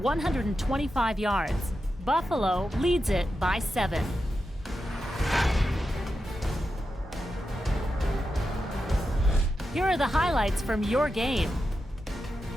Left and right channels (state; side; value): normal; both; correlation 0.89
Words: yards. Buffalo leads it by 7. Here are the highlights from your game.